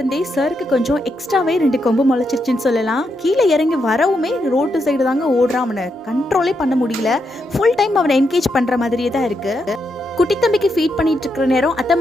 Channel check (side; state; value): both; normal; correlation 0.82